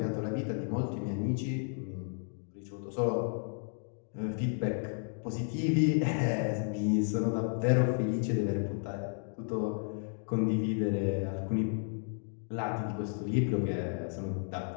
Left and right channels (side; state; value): right; silent; 56 dB below the other